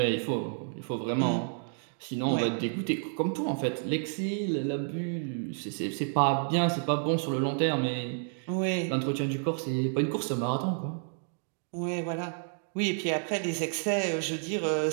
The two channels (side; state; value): left; silent; 58 dB below the other